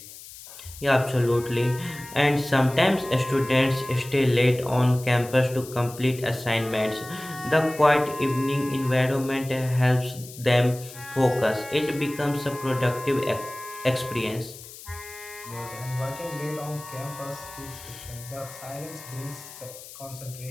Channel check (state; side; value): noise; left; hiss, 16 dB below the sound